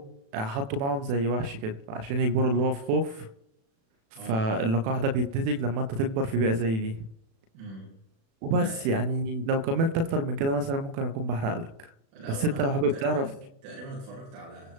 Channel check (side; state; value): left; late; 36 ms